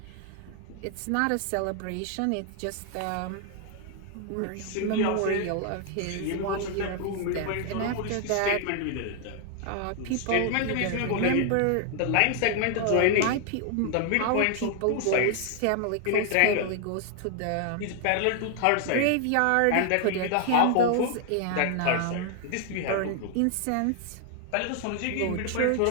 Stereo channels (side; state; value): both; different; correlation 0.00